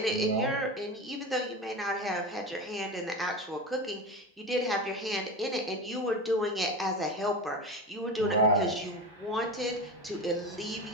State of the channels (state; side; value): normal; both; correlation 0.25